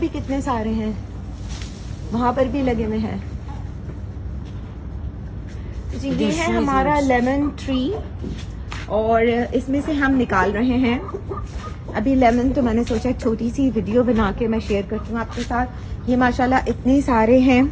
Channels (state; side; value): identical; both; correlation 1.00